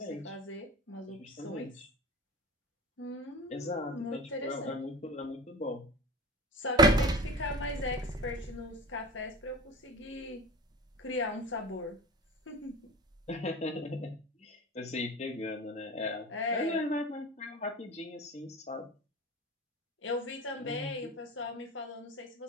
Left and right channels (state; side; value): normal; both; correlation 0.34